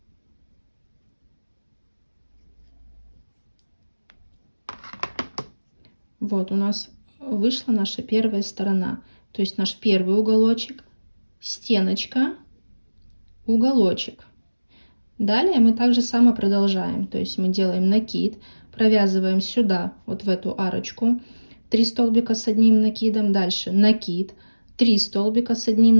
Вот у нас вышла наша первая сторона. То есть наш первый уголочек, стеночка, уголочек. Далее мы также само продолжаем. То есть мы делаем накид, провязываем сюда, вот в эту арочку, 3 столбика с одним накидом. Дальше накид, 3 столбика с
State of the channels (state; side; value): inverted; both; correlation -1.00